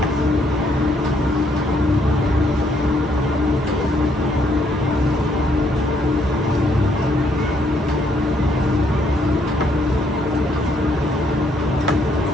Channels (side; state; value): both; normal; correlation 0.70